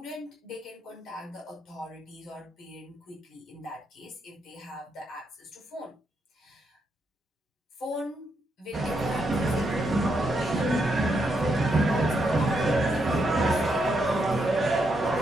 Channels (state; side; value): normal; both; correlation 0.80